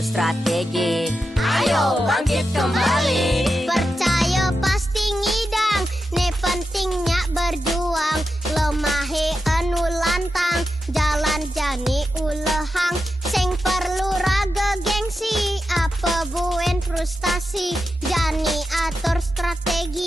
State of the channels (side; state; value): both; normal; correlation 0.89